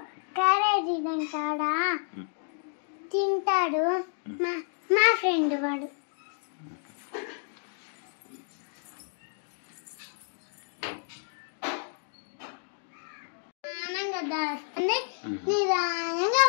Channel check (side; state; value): right; silent; digital silence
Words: క్యారేజీ తింటాడా తింటాడు. మా ఫ్రెండ్ వాడు ఆనంగా దాస్తుంది, నిదానంగా